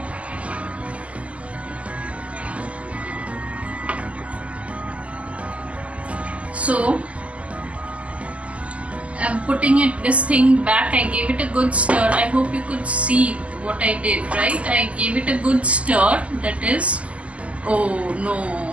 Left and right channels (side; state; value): left; late; 0.065 ms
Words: So I'm putting this thing back. I gave it a good stir. I hope you could see what I did, right? I gave it a good stir, that is, oh